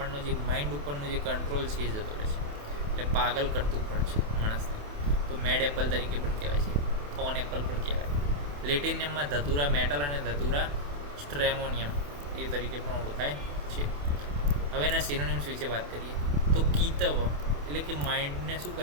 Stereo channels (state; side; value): late; left; 28 ms